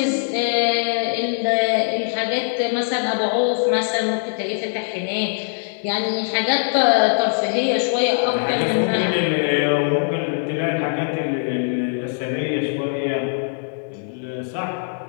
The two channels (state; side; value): silent; right; digital silence